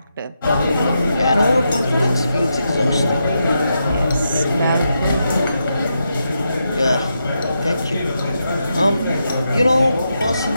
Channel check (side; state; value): both; inverted; correlation -0.84